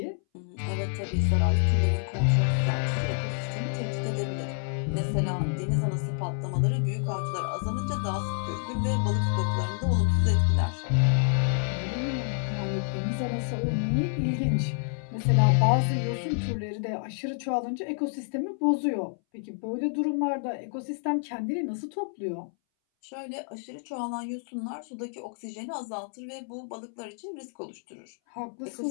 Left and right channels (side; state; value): right; silent; 59 dB below the other